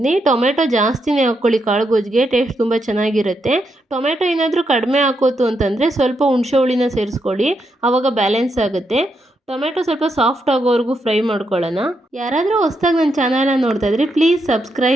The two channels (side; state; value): both; normal; correlation 0.81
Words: ಟೊಮೆಟೊ ಜಾಸ್ತಿನೇ ಹಾಕ್ಕೊಳ್ಳಿ, ಕಾಳುಗೊಜ್ಜಿಗೆ ಟೇಸ್ಟ್ ತುಂಬ ಚೆನ್ನಾಗಿರುತ್ತೆ. ಟೊಮೆಟೊ ಏನಾದರೂ ಕಡಿಮೆ ಹಾಕೋತು ಅಂತಂದರೆ ಸ್ವಲ್ಪ ಹುಣಸೆ ಹುಳಿನ ಸೇರಿಸ್ಕೊಳ್ಳಿ, ಆವಾಗ ಬ್ಯಾಲೆನ್ಸ್ ಆಗುತ್ತೆ. ಟೊಮೆಟೊ ಸ್ವಲ್ಪ ಸಾಫ್ಟ್ ಆಗೋವರೆಗೂ ಫ್ರೈ ಮಾಡ್ಕೊಳ್ಳೋಣ. ಯಾರಾದರೂ ಹೊಸ್ದಾಗಿ ನನ್ನ ಚಾನಲ್ನ ನೋಡ್ತಾ ಇದ್ರೆ ಪ್ಲೀಸ್